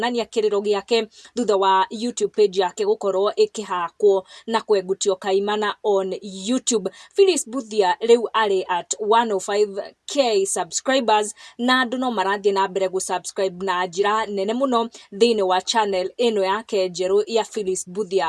kĩrĩro gĩake thutha wa YouTube page yake gũkorwo ĩkĩhakwo na kwengutio kaimana on YouTube. Phyllis Mbuthia rĩu arĩ at 105k subscribers na andũ no marathiĩ na mbere gũ-subscribe na njĩra nene mũno thĩinĩ wa channel ĩno yake njerũ ya Phyllis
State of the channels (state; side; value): identical; both; correlation 1.00